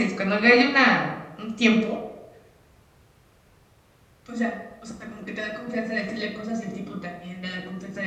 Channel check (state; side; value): identical; both; correlation 1.00